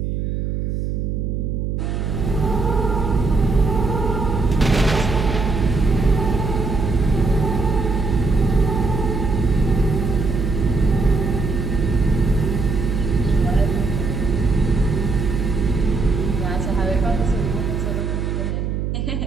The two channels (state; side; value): noise; right; hum, 2 dB below the sound